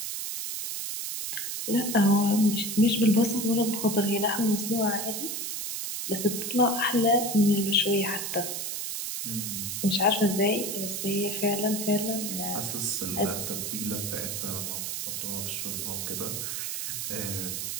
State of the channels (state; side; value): noise; right; hiss, 4 dB below the sound